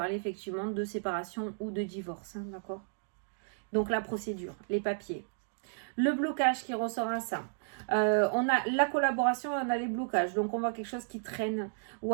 effectivement de séparation ou de divorce, hein, d'accord? Donc la procédure, les papiers. Le blocage qui ressort à ça. On a la collaboration et on a les blocages. Donc on voit quelque chose qui traîne. Ou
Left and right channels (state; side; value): silent; left; digital silence